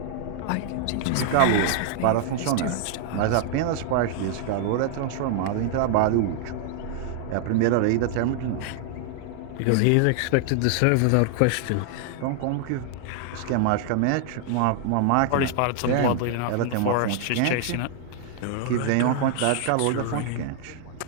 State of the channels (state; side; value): different; both; correlation -0.01